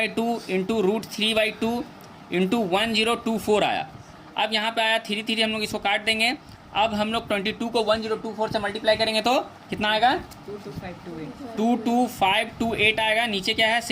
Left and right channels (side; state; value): both; identical; correlation 1.00